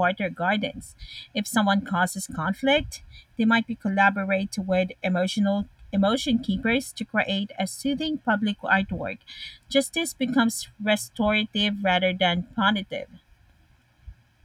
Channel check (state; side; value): identical; both; correlation 1.00